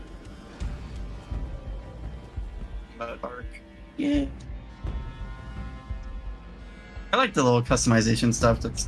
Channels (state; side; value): identical; both; correlation 1.00